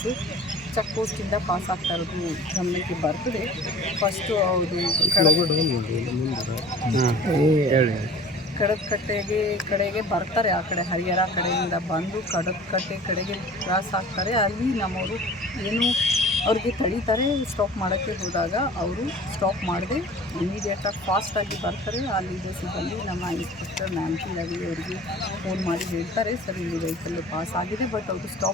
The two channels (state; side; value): normal; both; correlation 0.44